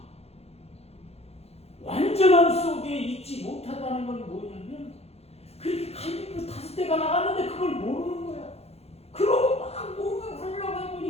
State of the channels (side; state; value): right; late; 0.30 ms